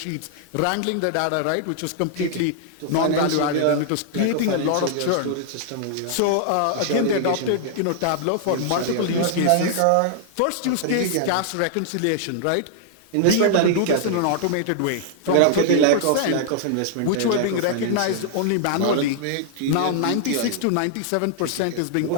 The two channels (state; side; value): different; both; correlation -0.01